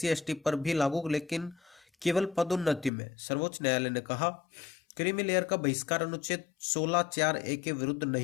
एसटी पर भी लागू, लेकिन केवल पदोन्नति में। सर्वोच्च न्यायालय ने कहा क्रीमी लेयर का बहिष्कार अनुच्छेद 16(4)(a) के विरुद्ध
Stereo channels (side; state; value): right; drops out; at 2.9 s